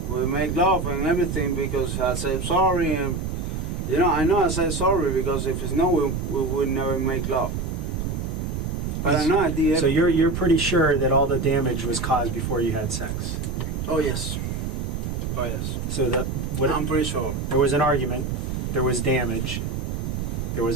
We make love and everything because I said sorry and I know I said sorry because if it's no, we would never make love. But I know I did. So you're pretty sure that all the damage was caused before you had sex. Oh yes. Oh yes. So I'm pretty sure. there was an argument, there was damage, there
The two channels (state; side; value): noise; right; rumble, 3 dB below the sound